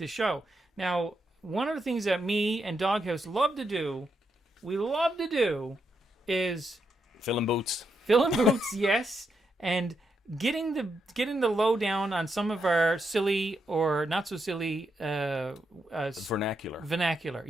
show. Now, one of the things that me and Doghouse love to do, is Filling boots. filling boots, yes, and getting the lowdown on some of our silly or not so silly Vernacular. vernacular.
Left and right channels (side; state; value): both; normal; correlation 0.82